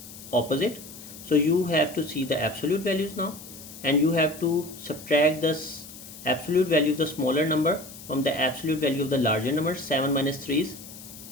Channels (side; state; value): left; noise; hiss, 16 dB below the sound